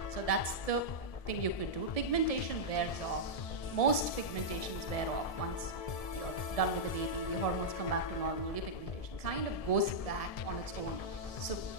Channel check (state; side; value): late; right; 1.7 ms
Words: So that's the thing you could do. Pigmentation wears off. Most pigmentations wear off once you're done with the baby. The hormones come back to normal. Your pigmentation kind of goes back on its own. So